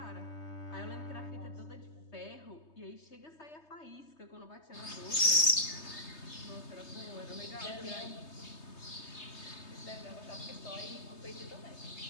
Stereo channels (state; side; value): late; right; 3.2 ms